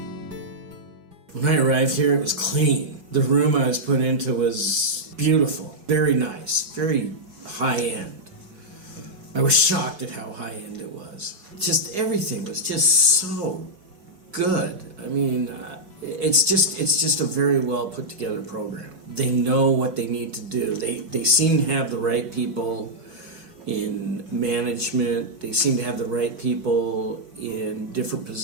When I arrived here, it was clean. The room I was put into was beautiful, very nice, very high-end. I was shocked at how high-end it was. Just everything was just so good. I mean, it's just a very well put together program. They know what they need to do. They seem to have the right people in management. They seem to have the right people in different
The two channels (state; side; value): late; left; 5.1 ms